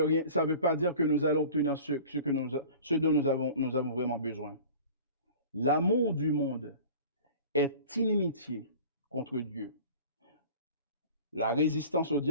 pas dire que nous allons obtenir ce dont nous avons vraiment besoin. L'amour du monde est inimitié contre Dieu. La résistance au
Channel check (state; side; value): inverted; both; correlation -0.42